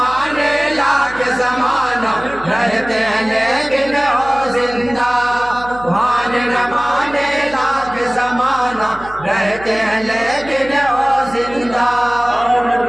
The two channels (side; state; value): right; noise; hum, 18 dB below the sound